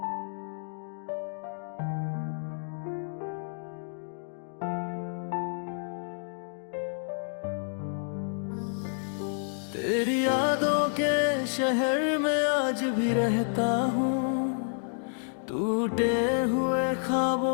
तेरी यादों के शहर में आज भी रहता हूँ, टूटे हुए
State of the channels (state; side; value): silent; right; digital silence